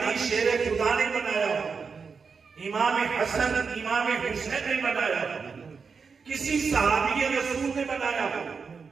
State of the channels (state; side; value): quieter; left; 5.4 dB